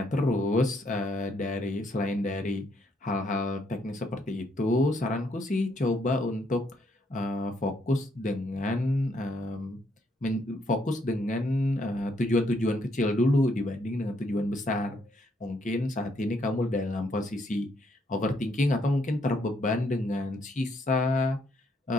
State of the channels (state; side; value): normal; both; correlation 0.72